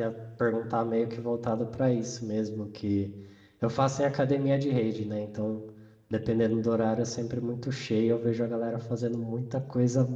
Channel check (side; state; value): both; identical; correlation 1.00